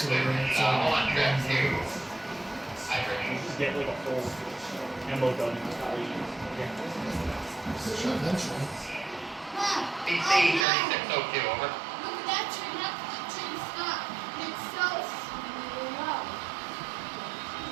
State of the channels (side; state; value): left; drops out; at 10.7 s